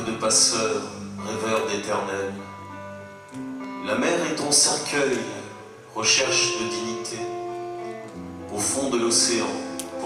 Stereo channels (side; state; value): both; identical; correlation 1.00